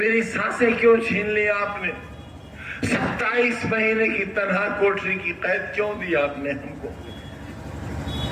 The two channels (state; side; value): identical; both; correlation 1.00